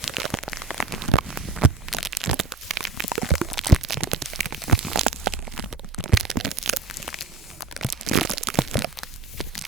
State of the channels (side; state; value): left; quieter; 4.1 dB